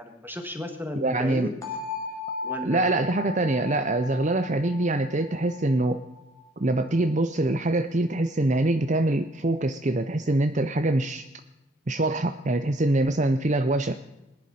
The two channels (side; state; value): both; normal; correlation 0.58